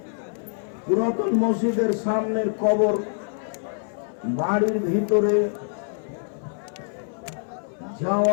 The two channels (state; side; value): silent; right; 59 dB below the other